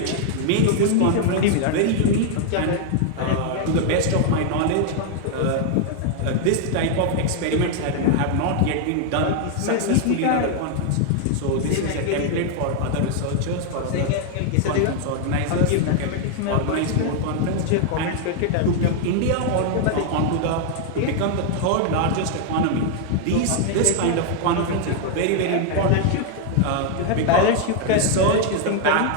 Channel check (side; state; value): both; different; correlation 0.00